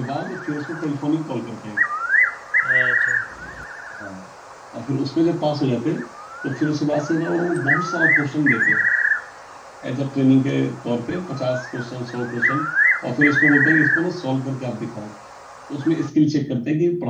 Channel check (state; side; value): identical; both; correlation 1.00